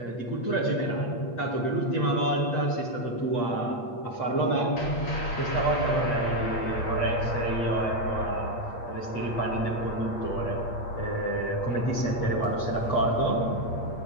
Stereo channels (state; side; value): late; right; 8.5 ms